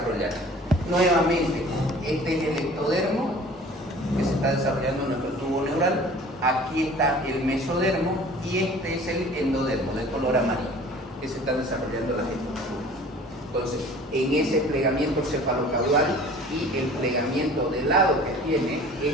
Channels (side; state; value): both; normal; correlation 0.47